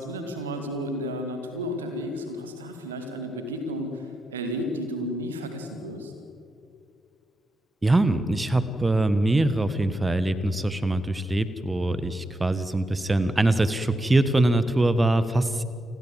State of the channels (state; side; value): normal; both; correlation 0.85